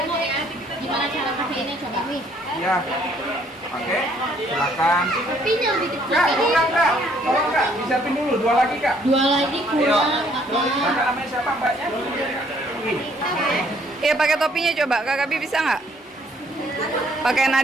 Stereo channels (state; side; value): normal; both; correlation 0.64